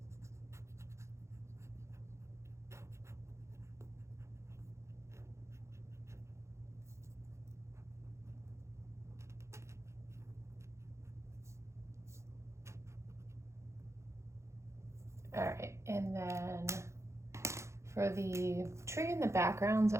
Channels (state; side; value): late; left; 0.14 ms